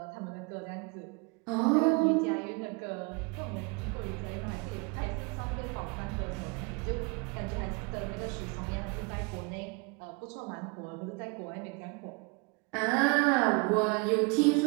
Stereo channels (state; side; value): quieter; left; 30.2 dB